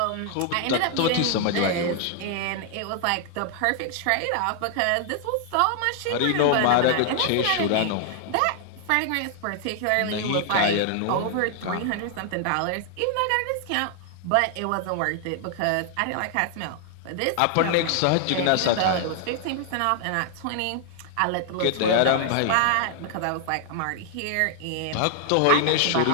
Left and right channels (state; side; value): different; both; correlation 0.00